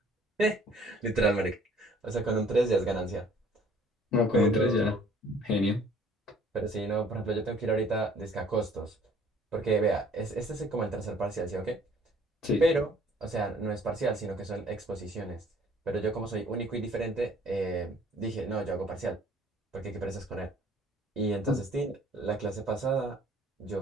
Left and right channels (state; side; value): normal; both; correlation 0.56